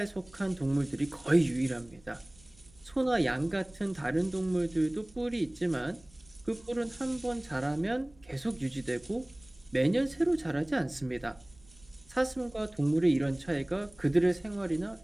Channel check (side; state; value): right; noise; rumble, 27 dB below the sound